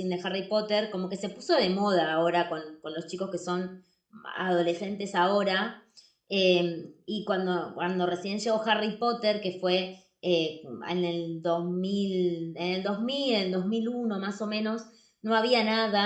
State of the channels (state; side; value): identical; both; correlation 1.00